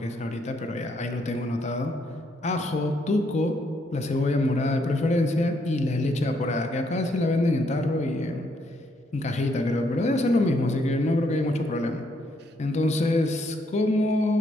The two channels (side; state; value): both; normal; correlation 0.73